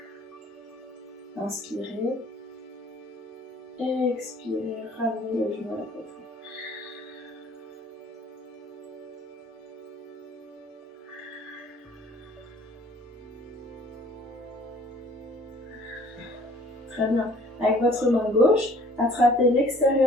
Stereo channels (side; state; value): both; normal; correlation 0.54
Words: Inspirez, expirez, ramenez le genou à la poitrine. Très bien. Avec votre main gauche, attrapez